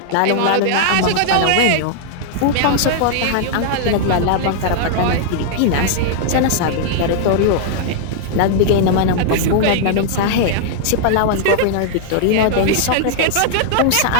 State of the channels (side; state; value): both; different; correlation -0.01